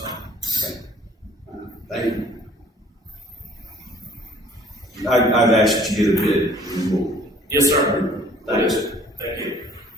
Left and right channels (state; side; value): normal; both; correlation 0.55